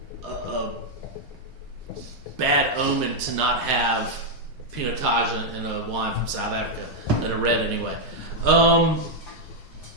bad omen to not have Pinotage in a wine from South Africa, in a red anyway.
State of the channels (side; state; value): right; late; 4.5 ms